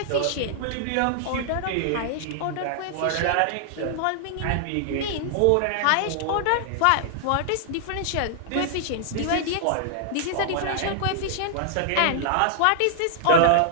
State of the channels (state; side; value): different; both; correlation -0.01